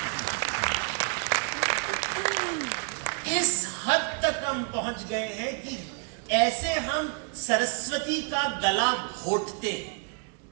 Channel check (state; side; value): quieter; left; 37.9 dB